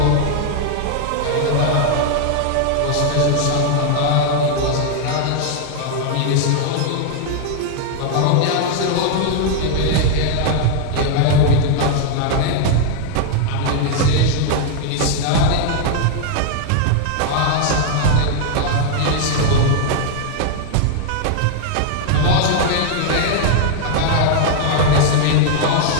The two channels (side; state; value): both; different; correlation 0.00